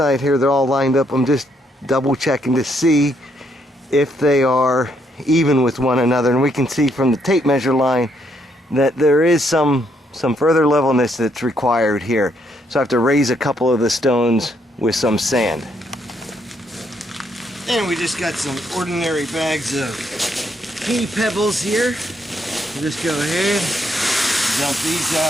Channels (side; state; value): both; normal; correlation 0.73